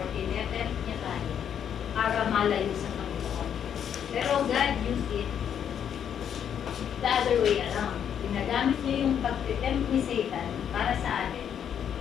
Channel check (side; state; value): right; quieter; 8.7 dB